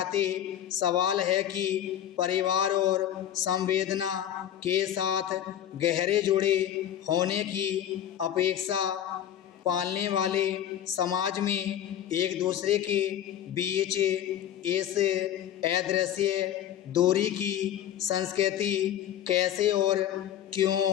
सवाल है कि परिवार और संवेदना के साथ गहरे जुड़े होने की अपेक्षा पालने वाले समाज में एक दूसरे के बीच इस अदृश्य दूरी की संस्कृति कैसे और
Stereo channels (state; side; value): quieter; right; 10.8 dB